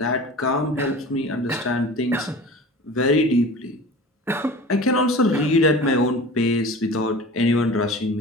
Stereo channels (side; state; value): both; normal; correlation 0.38